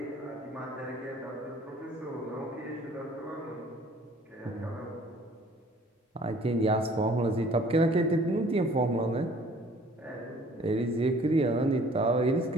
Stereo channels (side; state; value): both; normal; correlation 0.54